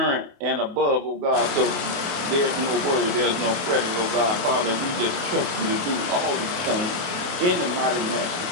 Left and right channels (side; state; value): left; late; 28 ms